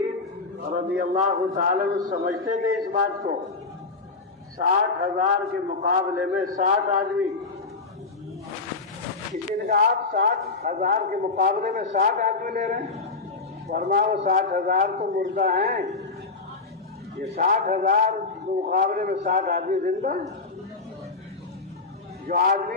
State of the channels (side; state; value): right; quieter; 4.0 dB